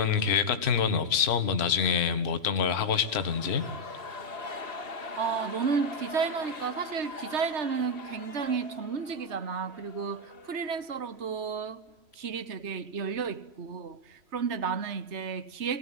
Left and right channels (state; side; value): late; left; 3.0 ms